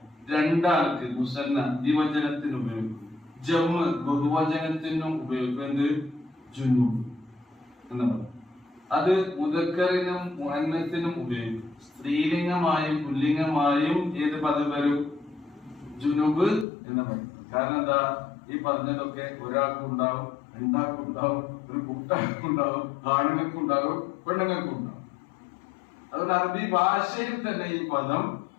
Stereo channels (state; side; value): drops out; right; at 16.7 s